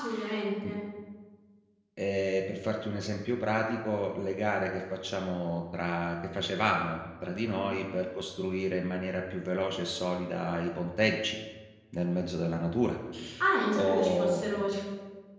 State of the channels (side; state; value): both; identical; correlation 1.00